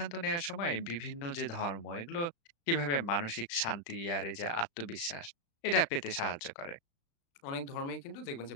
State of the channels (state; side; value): late; right; 35 ms